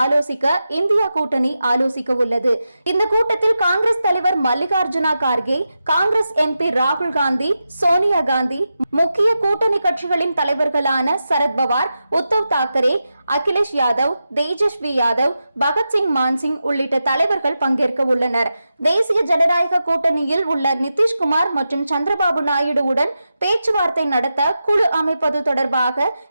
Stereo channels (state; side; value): inverted; both; correlation -0.90